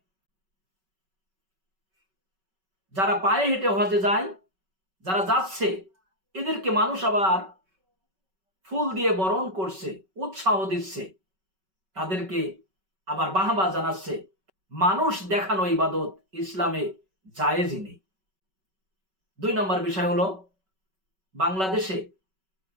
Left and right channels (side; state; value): left; late; 5.3 ms